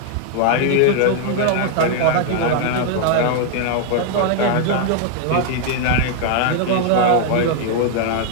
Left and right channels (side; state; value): both; different; correlation 0.00